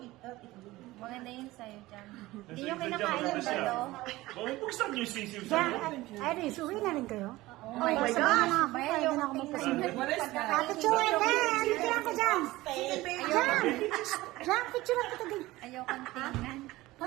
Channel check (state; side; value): quieter; left; 18.5 dB